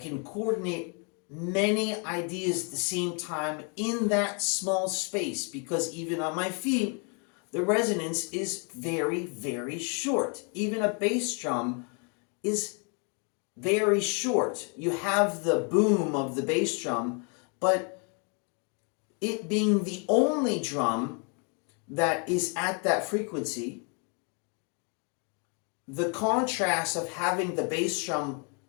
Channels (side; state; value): right; quieter; 36.9 dB